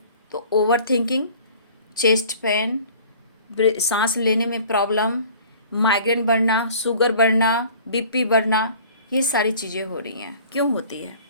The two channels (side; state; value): both; inverted; correlation -0.48